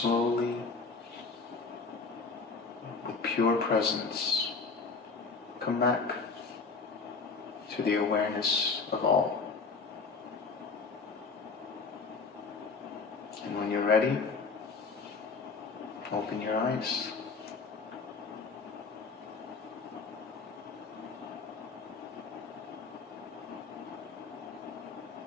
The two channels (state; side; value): quieter; right; 4.5 dB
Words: with pure presence, come back to the awareness of all. And when you're ready, open your eyes.